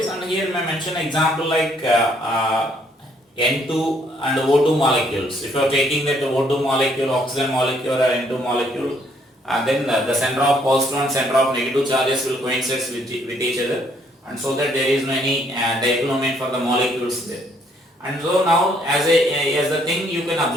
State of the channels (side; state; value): both; normal; correlation 0.67